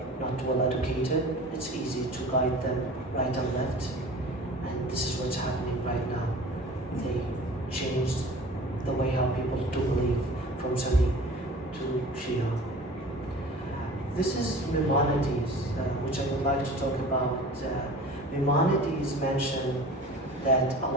not well educated. It's easy to guide them right and left. And this is what's happening right now. They changed the way how people do believe from Sunni to Shia. This is Maimonides, which I would like to talk about. Maimonides mentioned that a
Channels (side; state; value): both; normal; correlation 0.41